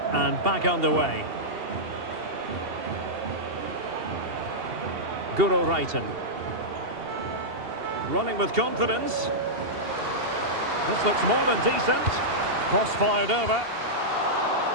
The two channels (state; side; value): late; left; 2.8 ms